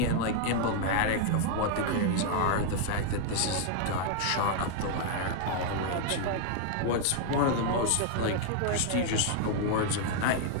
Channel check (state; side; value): different; both; correlation 0.00